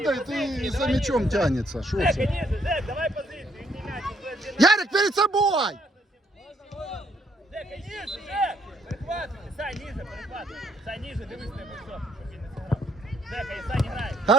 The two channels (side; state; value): both; normal; correlation 0.69